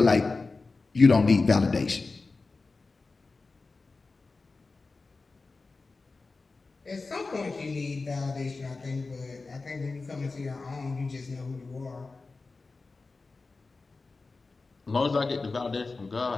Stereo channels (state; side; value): quieter; right; 3.8 dB